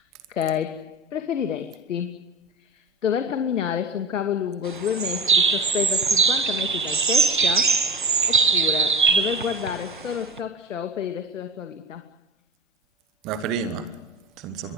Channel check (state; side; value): normal; both; correlation 0.31